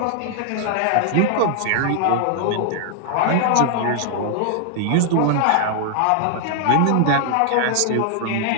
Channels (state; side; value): different; both; correlation 0.00